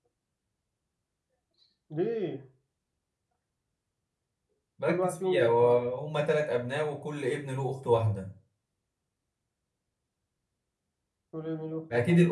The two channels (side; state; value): both; identical; correlation 1.00